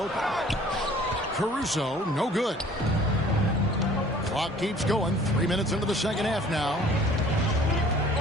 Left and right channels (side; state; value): both; normal; correlation 0.52